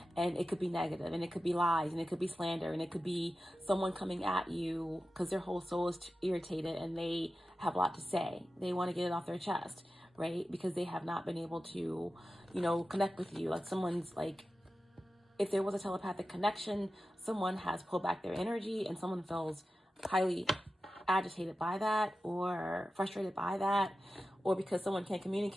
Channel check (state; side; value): normal; both; correlation 0.93